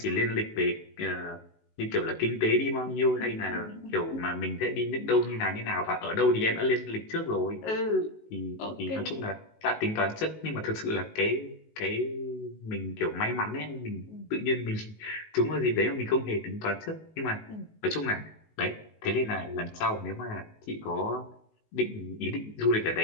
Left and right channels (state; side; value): late; right; 19 ms